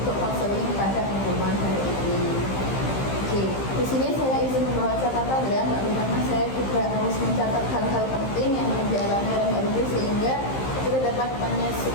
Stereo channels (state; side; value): late; right; 15 ms